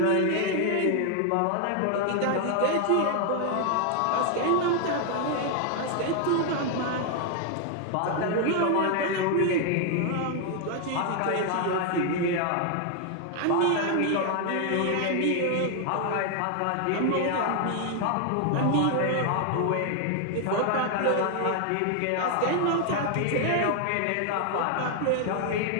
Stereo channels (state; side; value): different; both; correlation 0.00